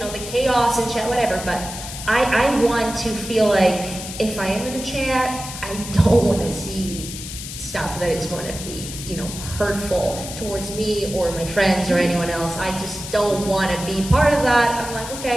chaos and chat, whatever. But I want to feel like if I am in a chat, I don't want to see stuff that is going to be, hurtful towards me or my friends or anyone else. I just don't want to be part of that. I'm like,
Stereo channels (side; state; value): left; noise; hiss, 10 dB below the sound